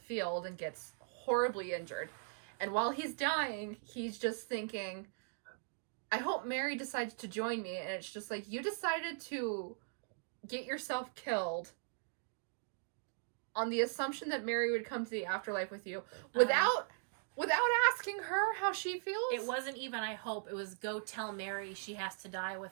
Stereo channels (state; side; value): silent; left; digital silence